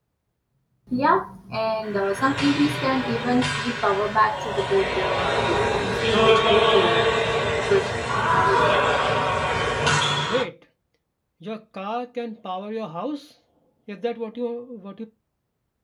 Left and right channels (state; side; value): identical; both; correlation 1.00